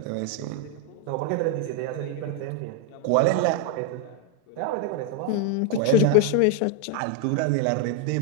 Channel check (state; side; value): different; both; correlation 0.01